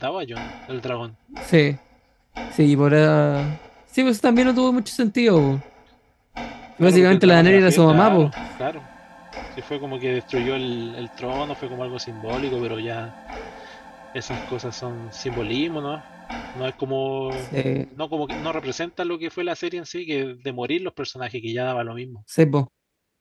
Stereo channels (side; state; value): both; identical; correlation 1.00